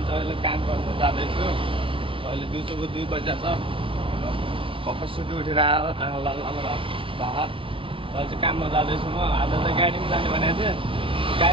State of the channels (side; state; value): left; late; 0.25 ms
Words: अहिले काम गर्न जाँदैछु। अहिले दिउँसोको 2 बजे छ। भर्खर सुति उठेर आएर अहिले चाहिँ काममा जाँदैछु म। आज चाहिँ गाडीमा जाने भनेको थिएँ।